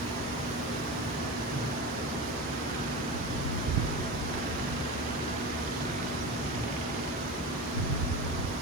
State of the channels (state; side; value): normal; both; correlation 0.25